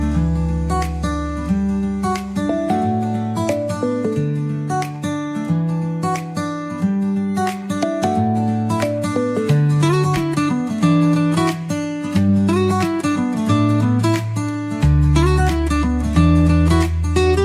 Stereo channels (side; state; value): both; identical; correlation 1.00